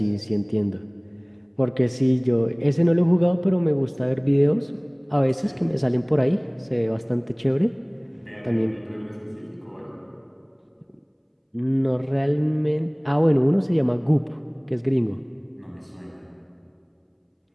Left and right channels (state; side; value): identical; both; correlation 1.00